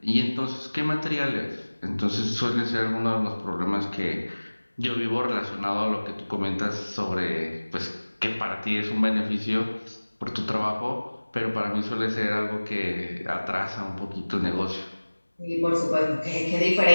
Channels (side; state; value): both; inverted; correlation -1.00